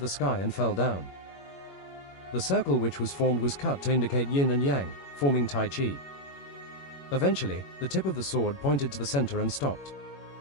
the sky and fell down. The circle which was formed was cut to indicate yin and yang, forming Tai Chi. Eventually, the tip of the sword pointed to the center and stopped.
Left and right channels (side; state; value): right; late; 21 ms